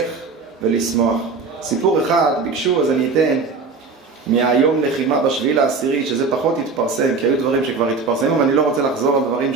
ולשמוח. סיפור אחד ביקשו, אז אני אתן מהיום לחימה בשביעי לעשירי, שזה פחות התפרסם, כי היו דברים שכבר התפרסמו, ואני לא רוצה לחזור על דברים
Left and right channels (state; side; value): quieter; left; 4.4 dB